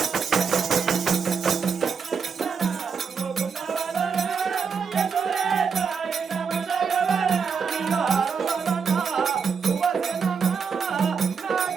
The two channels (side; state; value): left; quieter; 5.9 dB